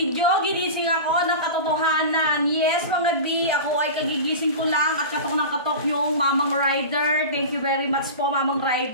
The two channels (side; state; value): both; inverted; correlation -0.30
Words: ginising ako ng katotohanan. Yes mga B, ako ay kagigising ko lang at katok ng katok yung Mamang Rider. Thank you very much po Mamang